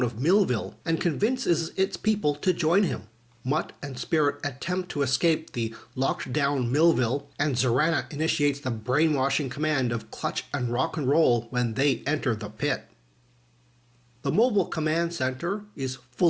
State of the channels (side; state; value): both; identical; correlation 1.00